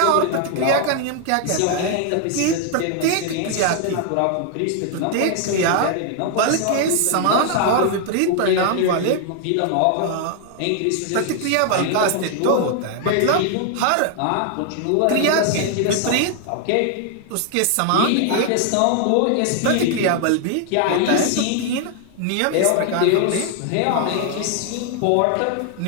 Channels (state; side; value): different; both; correlation 0.00